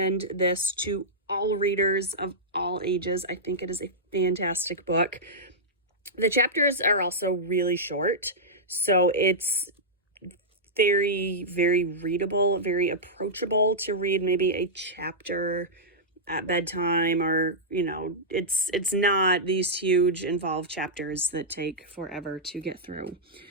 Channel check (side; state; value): both; normal; correlation -0.10